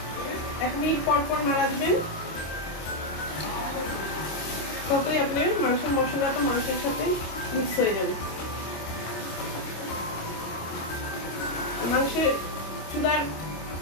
1 মিনিট পর পর নাড়া দিবেন, ততই আপনার মাংসের মশলাটা মাংসের সাথে মিক্স হয়ে যাবে। মাংসের চুলার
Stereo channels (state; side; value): late; right; 25 ms